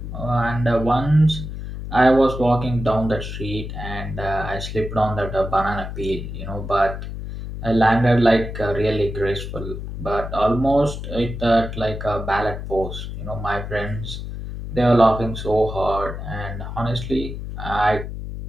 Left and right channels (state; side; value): noise; left; hum, 7 dB below the sound